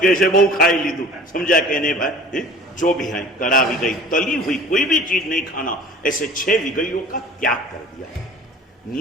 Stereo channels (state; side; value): normal; both; correlation 0.44